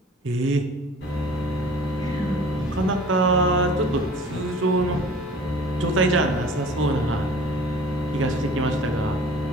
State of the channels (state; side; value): normal; both; correlation 0.46